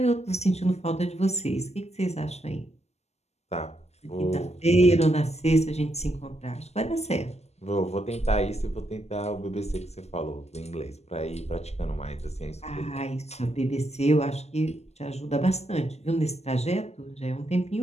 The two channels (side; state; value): right; late; 0.31 ms